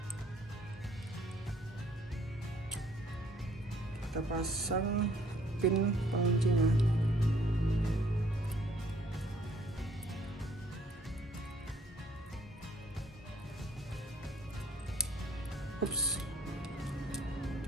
Kita pasang pin penguncinya. Ups.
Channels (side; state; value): both; normal; correlation 0.61